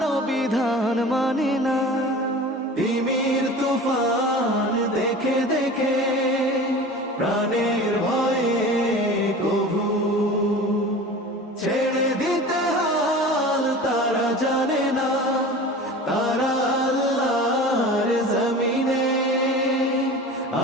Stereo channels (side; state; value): both; normal; correlation 0.37